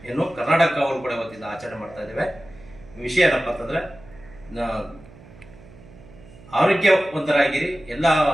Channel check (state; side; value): noise; right; hum, 21 dB below the sound